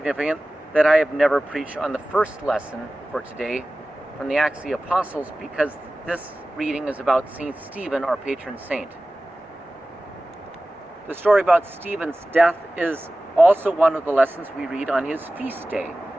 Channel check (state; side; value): normal; both; correlation 0.97